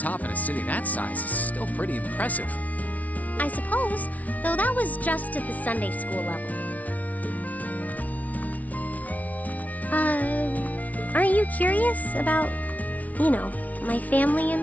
in a city that size is still pretty impressive. I suppose, though that was just at the Sunday school level. Aren't you curious about, my family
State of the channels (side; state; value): right; late; 0.071 ms